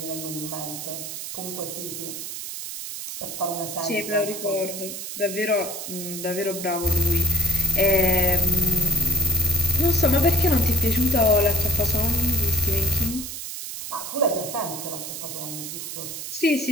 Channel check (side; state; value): right; noise; hiss, 7 dB below the sound